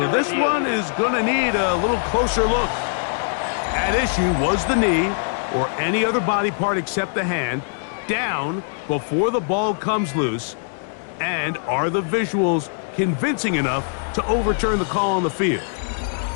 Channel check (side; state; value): right; silent; digital silence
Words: this one is going to need a little closer look. At issue was the knee, or any other body part except the hand, down before the ball comes loose. And are the visuals convincing enough to overturn the call on the field?